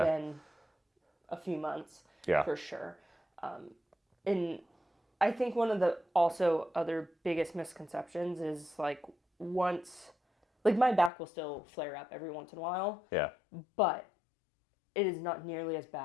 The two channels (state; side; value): drops out; right; at 11.1 s